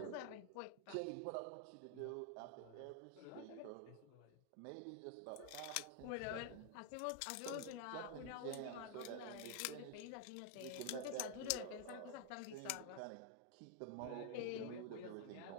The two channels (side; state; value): both; different; correlation 0.00